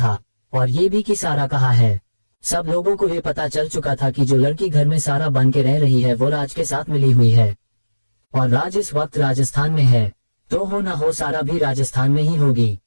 और ये भी कि सारा कहाँ है। सब लोगों को ये पता चल चुका था कि जो लड़की घर में सारा बन के रह रही है वो राज के साथ मिली हुई है और राज इस वक्त राजस्थान में है, तो हो ना हो सारा भी राजस्थान में ही होगी।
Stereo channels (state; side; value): inverted; both; correlation -1.00